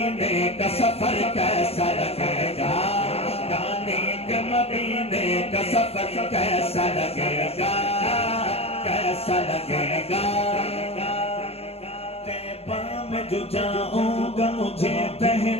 کا سفر کیسا لگے گا. جانے کے مدینے کا سفر کیسا لگے گا. کیسا لگے گا. جو جاؤں گا مجھے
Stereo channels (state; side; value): late; right; 0.29 ms